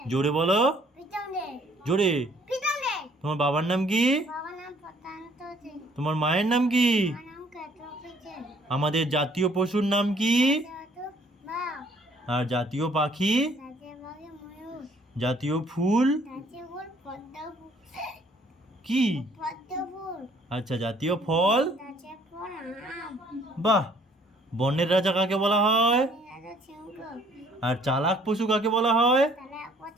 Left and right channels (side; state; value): both; normal; correlation 0.60